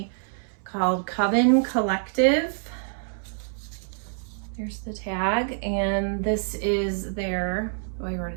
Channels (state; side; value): silent; left; 61 dB below the other